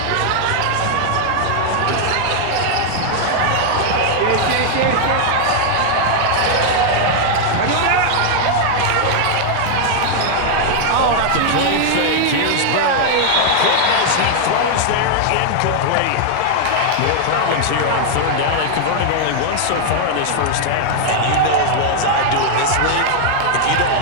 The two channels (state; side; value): different; both; correlation 0.00